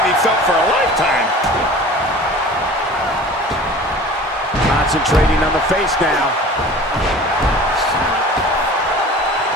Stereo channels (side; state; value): both; normal; correlation 0.41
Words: be felt for a lifetime. Concentrating on the face now.